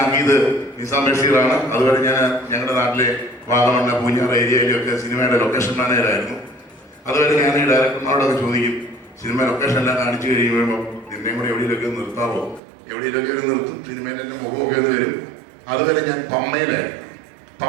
നിസാം ബഷീറാണ്. അതുവരെ ഞാൻ ഞങ്ങളുടെ നാട്ടിലെ വാഗമണ്ണ, പൂഞ്ഞാറ് ഏരിയയിലൊക്കെ സിനിമയുടെ ലൊക്കേഷൻ മാനേജറായിരുന്നു. അതുവരെ ഞാൻ ഈ ഡയറക്ടർമാരോടൊക്കെ ചോദിക്കും, സിനിമ ലൊക്കേഷൻ എല്ലാം കാണിച്ചു കഴിയുമ്പോൾ നിന്നെയും കൂടെ എവിടെയെങ്കിലൊക്കെ നിർത്താവോ, എവിടെയെങ്കിലൊക്കെ നിർത്തും, സിനിമയിൽ എൻ്റെ മുഖമൊക്കെ ഇത് വരും. അതുവരെ ഞാൻ പമ്മയിലായിരുന്നു.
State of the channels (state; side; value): drops out; left; at 12.6 s